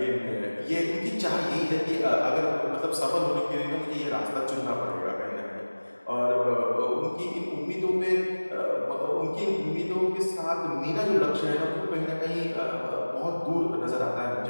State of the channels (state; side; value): inverted; both; correlation -1.00